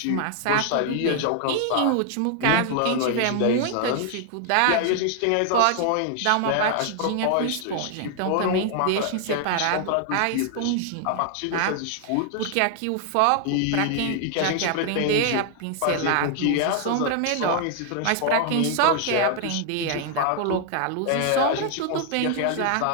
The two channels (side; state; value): both; different; correlation 0.00